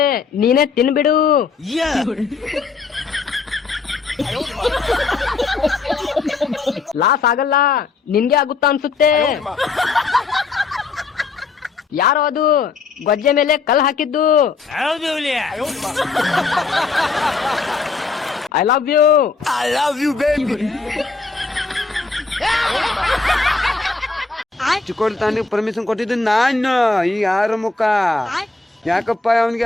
ನೀನೇ ತಿನ್ಬಿಡು. ಲಾಸ್ ಆಗಲ್ಲ, ನಿನ್ಗೆ ಆಗುತ್ತಾ ಅನ್ಸುತ್ತೆ. ಯಾರೋ ಅದು ಗೊಜ್ಜೆ ಮೇಲೆ ಕಲ್ ಹಾಕಿದ್ದು. I love you baby. ಚಿಕ್ಕೋಳ್ತಾನಿಗೆ ಪರ್ಮಿಷನ್ ಕೊಟ್ಟಿದ್ದು ನಾನು. ಈ ಯಾರ ಮುಖ ಯಾಕಪ್ಪ ಅವನಿಗೆ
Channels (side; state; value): right; quieter; 4.4 dB